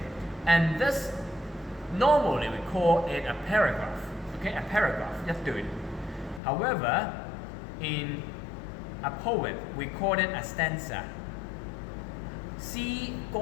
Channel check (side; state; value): right; drops out; at 6.4 s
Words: And this, normally we call it a paragraph, okay, a paragraph, let's do it. However, in a poem we call it a stanza. 詩